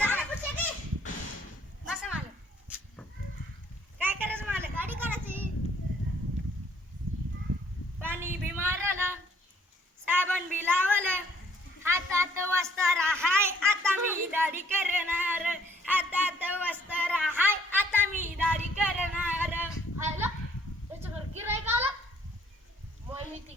बसा मालक. काय करायचं मालक? गाडी करायची. पाणी बी मारलं, साबण बी लावलं, हातात वस्तार हाय आता मी दाढी करणार. हातात वस्तार हाय आता मी दाढी करणार. आयला त्याच्याकडे गिराईक आला. मग मी ते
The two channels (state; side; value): normal; both; correlation 0.63